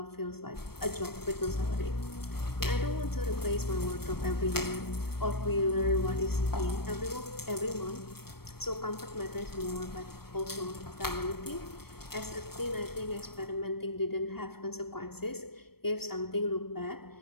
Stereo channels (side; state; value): right; late; 0.95 ms